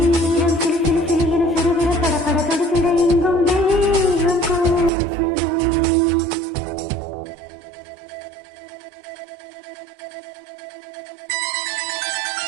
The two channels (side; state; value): left; drops out; at 4.9 s